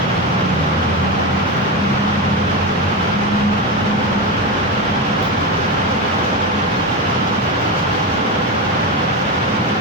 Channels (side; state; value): both; normal; correlation 0.16